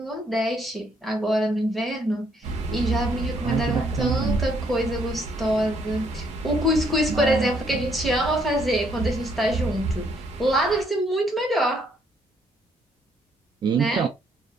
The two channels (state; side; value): normal; both; correlation 0.69